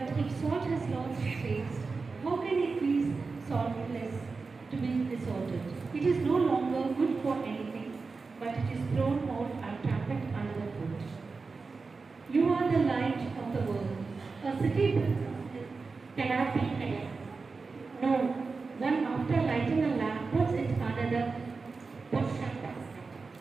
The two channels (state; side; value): quieter; left; 4.3 dB